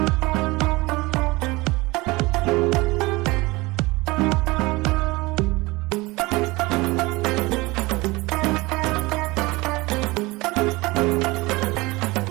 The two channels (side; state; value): left; quieter; 22.4 dB